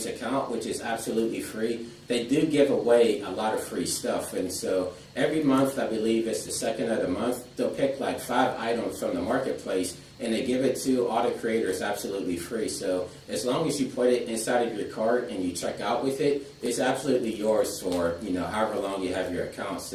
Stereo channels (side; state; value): both; identical; correlation 1.00